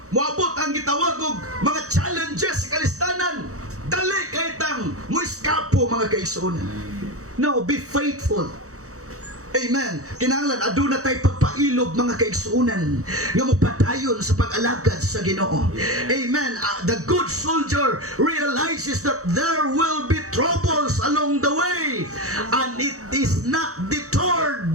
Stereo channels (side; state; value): left; late; 0.65 ms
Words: moabot ang gitawag og mga challenges sa kalistanan, dali kay tang muiskapo, mga kaigsunan. No, be faithful. Amen. Kinahanglan aduna tay pagpailog, mga kaigsuunan, nga mopadayon sa pag-alagad sa Ginoo. Amen. The good soldier realizes that there will be troubles along the way and it is not deterred